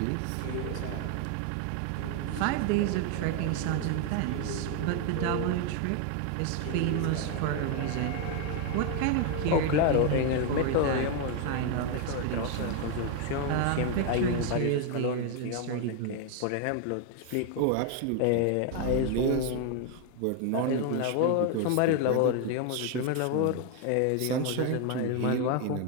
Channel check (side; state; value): both; different; correlation 0.01